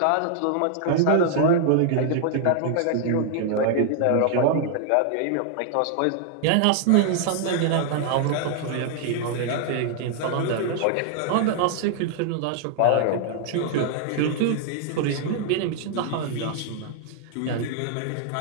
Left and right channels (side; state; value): both; different; correlation -0.01